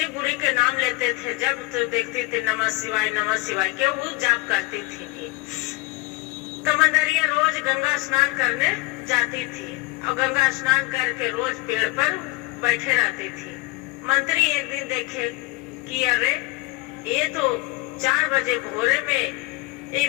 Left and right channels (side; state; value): right; quieter; 21.9 dB